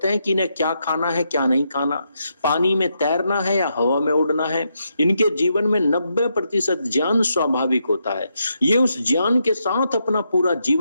हैं कि इन्हें क्या खाना है, क्या नहीं खाना, पानी में तैरना है या हवा में उड़ना है। इनके जीवन में 90% ज्ञान स्वाभाविक होता है। ये उस ज्ञान के साथ अपना पूरा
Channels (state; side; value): inverted; both; correlation -0.81